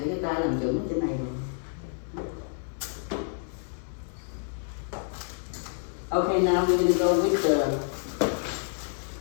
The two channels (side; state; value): right; silent; 59 dB below the other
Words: cái tay làm chuẩn trên này rồi. Okay, now we're going to go with the